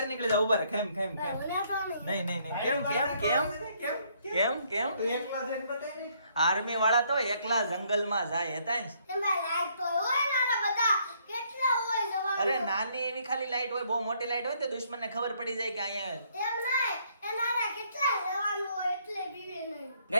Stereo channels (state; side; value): inverted; both; correlation -0.68